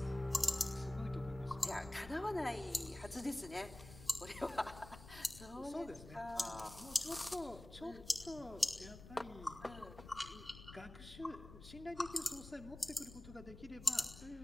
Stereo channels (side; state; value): left; noise; rumble, 15 dB below the sound